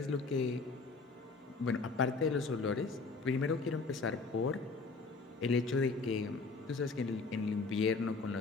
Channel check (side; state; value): right; quieter; 4.0 dB